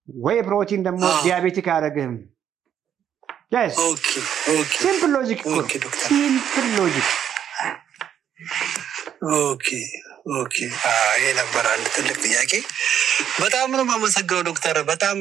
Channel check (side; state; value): left; quieter; 9.4 dB